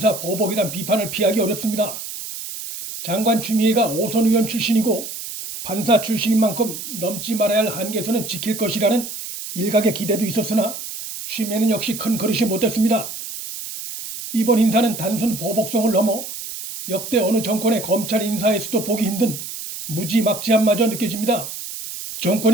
보복이란 비판을 피하기 어렵습니다. 장관 추미애가 오선 의원 출신이고 판사 출신인 만큼 넘지 말아야 할 한계선은 지킬 것이라는 일각의 기대도 있었으나 추미애는 역시 큰 그릇이 못됐습니다. 이번 인사는 단순 보복성을 넘어 역대 어느 정권의 검찰 인사에서도 보기 힘든 무지막지함마저 느껴집니다.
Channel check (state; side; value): noise; right; hiss, 9 dB below the sound